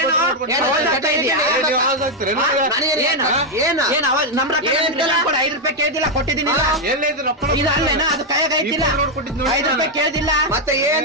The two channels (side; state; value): both; normal; correlation 0.01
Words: ನಮ್ 5 ರೂಪಾಯಿ ಕೇಳ್ದಿಲ್ಲ ಕೊಟ್ಟಿದ್ದೀನಿ ಅದು ಕೈಯಾಗ ಐತಿಲ್ಲ 5 ರೂಪಾಯಿ ಕೇಳ್ದಿಲ್ಲ ಮತ್ತೆ